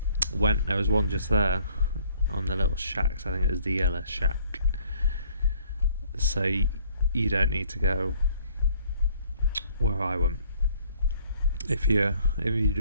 went. There was one just there on the little shacks. I think it was the yellow shack. So you don't need to go where I went. If you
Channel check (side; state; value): both; inverted; correlation -0.60